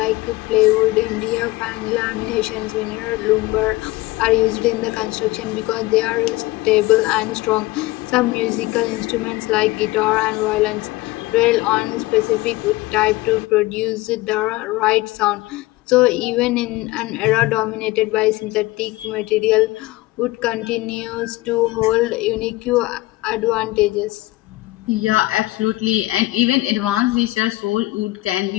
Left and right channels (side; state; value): right; quieter; 19.4 dB